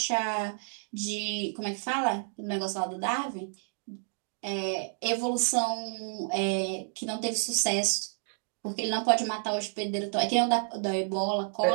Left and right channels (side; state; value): left; silent; digital silence